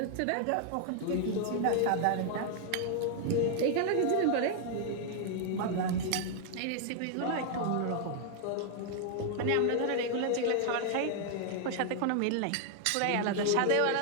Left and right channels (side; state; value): both; different; correlation 0.00